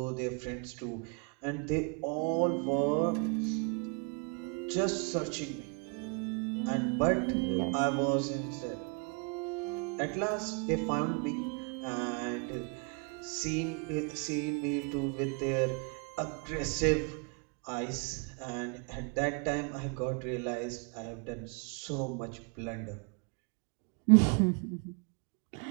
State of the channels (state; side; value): quieter; left; 35.7 dB